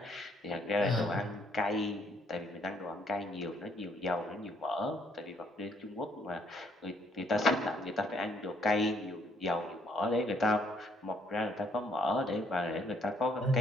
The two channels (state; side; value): normal; both; correlation 0.68